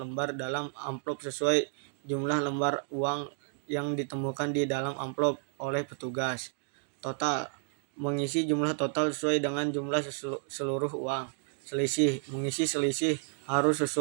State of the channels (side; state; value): left; silent; digital silence